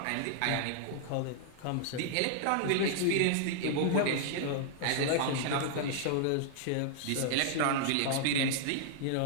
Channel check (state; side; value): different; both; correlation -0.01